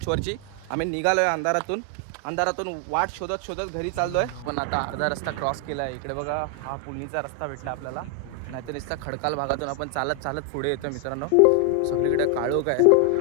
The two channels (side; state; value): both; different; correlation 0.00